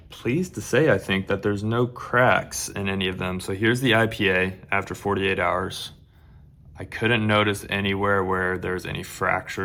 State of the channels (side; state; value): both; identical; correlation 1.00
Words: pleased to say I think that there's no cracks in any of them. So here's the IPA after 48 hours. I couldn't notice anywhere where there's any